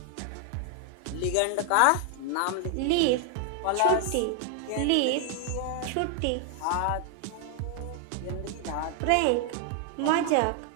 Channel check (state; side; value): different; both; correlation 0.00